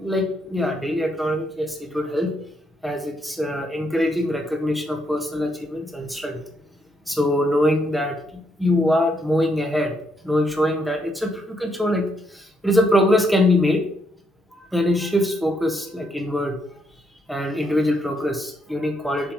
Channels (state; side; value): normal; both; correlation 0.76